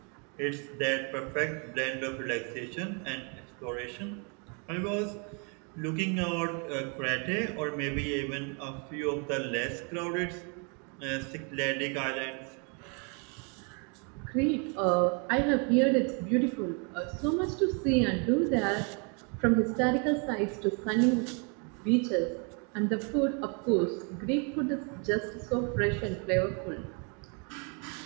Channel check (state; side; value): quieter; left; 36.4 dB